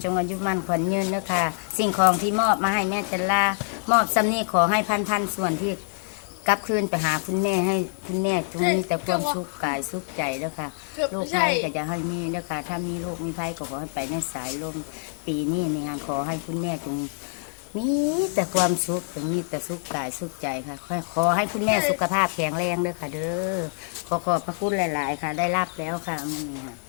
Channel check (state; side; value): silent; right; digital silence